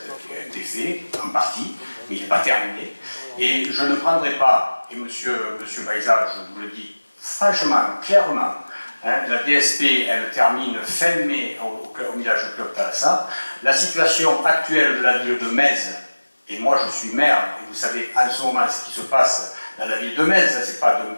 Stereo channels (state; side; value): inverted; both; correlation -1.00